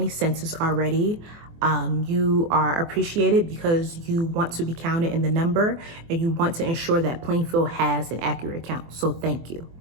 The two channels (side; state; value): left; late; 24 ms